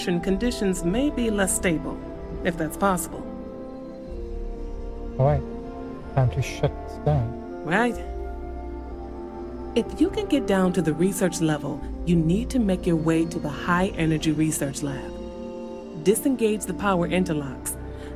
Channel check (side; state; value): both; identical; correlation 1.00